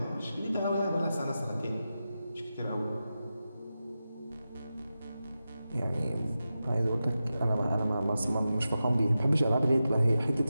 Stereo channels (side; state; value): both; inverted; correlation -0.92